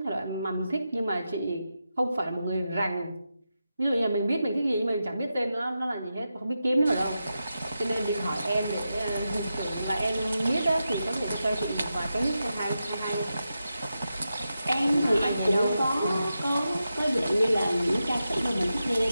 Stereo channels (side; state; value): both; inverted; correlation -0.89